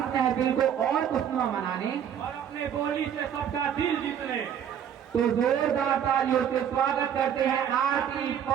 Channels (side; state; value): left; quieter; 9.0 dB